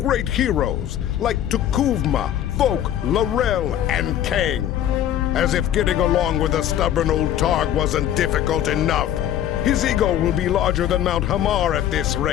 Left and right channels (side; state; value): right; quieter; 11.1 dB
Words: heroes like Tukuvma, Vok, Laurel, and Kang. As if getting along with the stubborn old Targ wasn't difficult enough, his ego will be larger than Mount Hamar at this